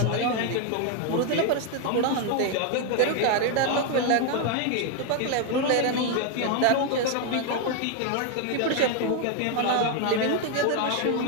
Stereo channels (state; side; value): different; both; correlation 0.01